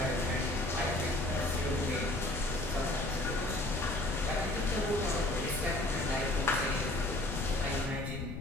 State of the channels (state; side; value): noise; left; rumble, 7 dB below the sound